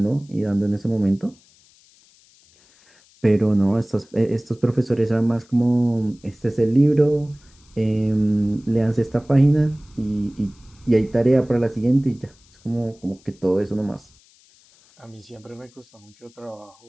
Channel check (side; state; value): left; noise; hiss, 30 dB below the sound